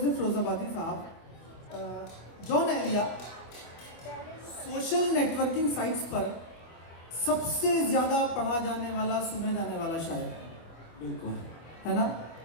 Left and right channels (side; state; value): right; late; 25 ms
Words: फ़िरोज़ाबादी साहब, Jaun Elia social networking sites पर सबसे ज़्यादा पढ़ा जाने वाला, सुने जाने वाला शायर, बिल्कुल है ना?